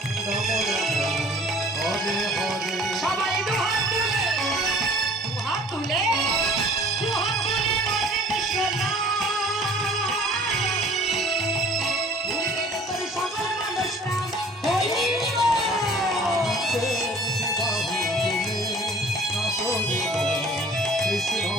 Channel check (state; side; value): normal; both; correlation 0.50